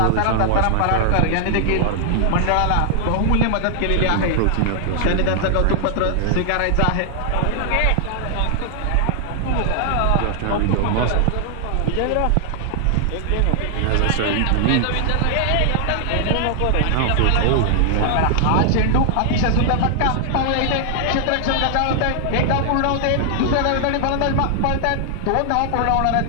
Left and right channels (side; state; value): both; different; correlation 0.00